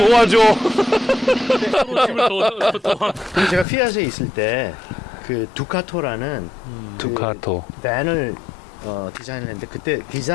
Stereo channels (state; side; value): drops out; right; at 3.7 s